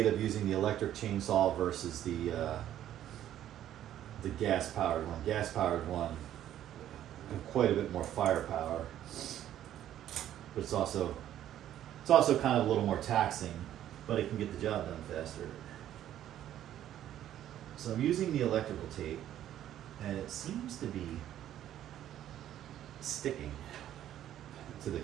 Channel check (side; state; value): left; quieter; 11.7 dB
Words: of using the electric chainsaw versus the gas-powered one. Gas-powered one, quite a bit more firepower, but it's also kind of a little more taxing, but it can get the job done faster. So I'm using the electrical tape, and it seems to be sticking to the